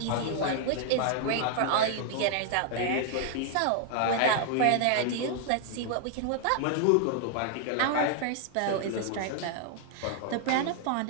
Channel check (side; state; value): both; different; correlation 0.00